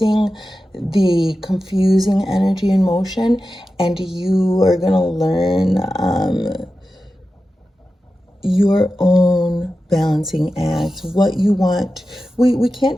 the confusing energy and motion, and you are going to learn your own balancing act, what you want. We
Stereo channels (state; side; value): normal; both; correlation 0.93